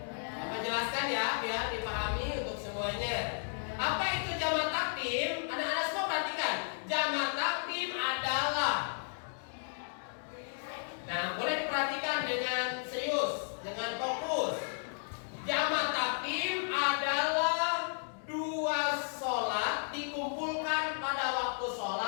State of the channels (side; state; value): right; silent; digital silence